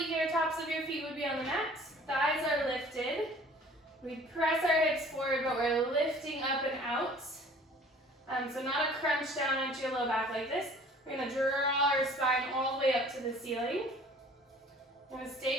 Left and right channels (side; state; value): both; normal; correlation 0.51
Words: tops of your feet would be on the mat. Thighs are lifted. We press our hips forward, but we're lifting up and out. So not a crunch down into your low back like this. We're going to draw our spine all the way up to the ceiling. We're going to